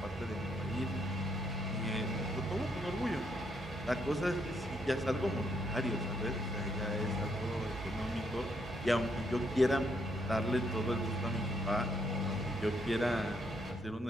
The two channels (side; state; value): both; normal; correlation 0.74